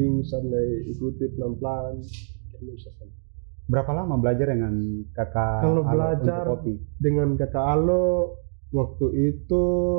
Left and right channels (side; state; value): left; silent; digital silence